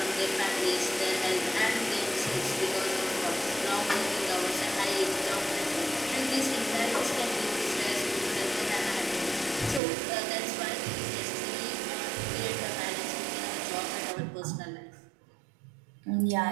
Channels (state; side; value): drops out; left; at 9.8 s